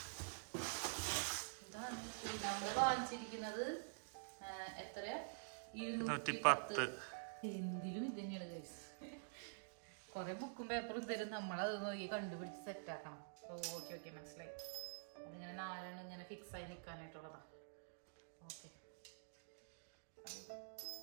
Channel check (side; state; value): left; silent; digital silence